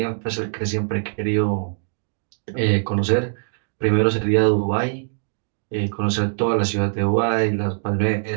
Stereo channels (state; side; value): silent; left; digital silence